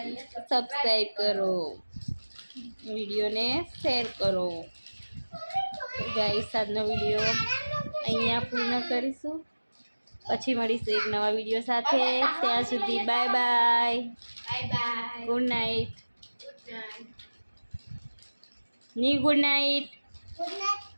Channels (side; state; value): both; inverted; correlation -1.00